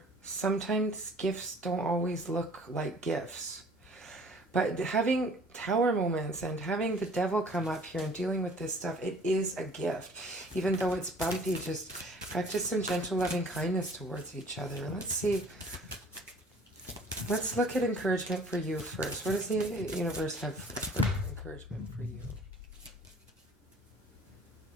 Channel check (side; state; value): both; normal; correlation 0.52